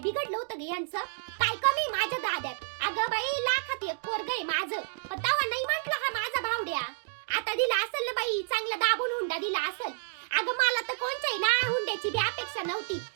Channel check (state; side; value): silent; left; digital silence